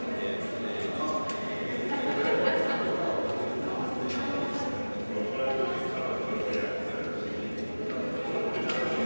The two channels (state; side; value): inverted; both; correlation -1.00